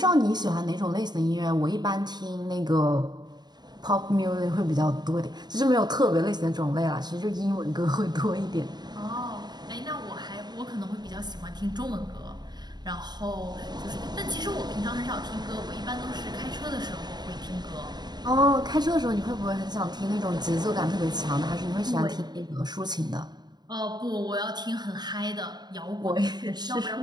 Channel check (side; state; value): left; late; 0.20 ms